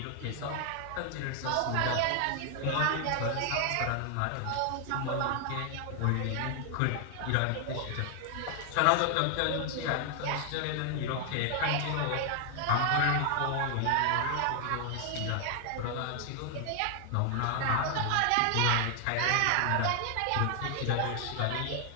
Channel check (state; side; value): different; both; correlation 0.00